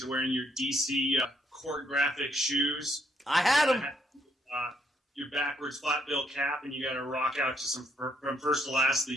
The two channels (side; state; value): both; normal; correlation 0.72